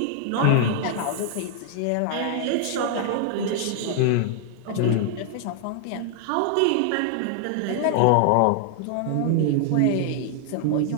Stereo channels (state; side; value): different; both; correlation 0.00